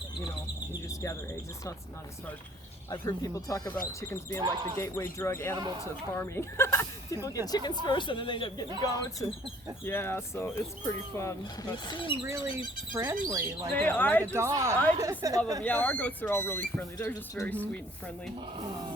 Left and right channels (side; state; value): both; normal; correlation 0.58